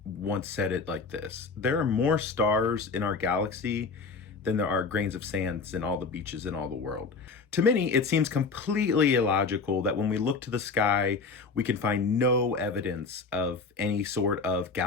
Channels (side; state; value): right; quieter; 4.5 dB